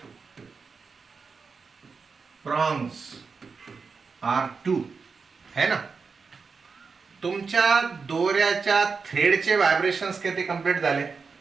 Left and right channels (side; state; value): left; quieter; 5.0 dB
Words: prongs are 2, है ना? तुमच्या दोऱ्याच्या थ्रेडचे व्हायब्रेशन्स किती कंप्लीट झाले?